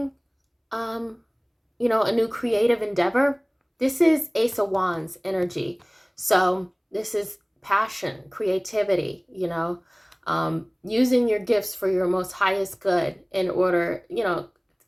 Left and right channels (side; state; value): both; identical; correlation 1.00